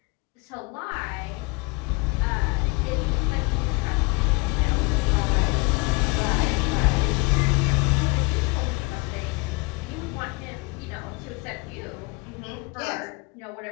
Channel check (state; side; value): quieter; right; 27.7 dB